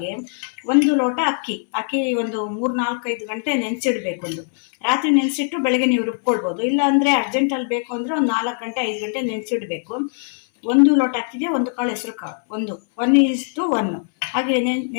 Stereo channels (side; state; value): right; silent; 62 dB below the other